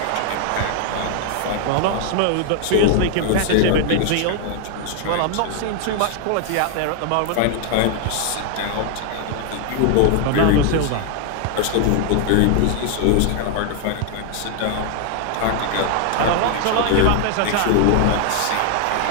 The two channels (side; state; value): both; different; correlation 0.00